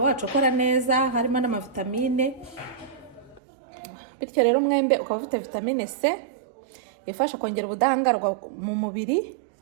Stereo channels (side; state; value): left; drops out; at 3.4 s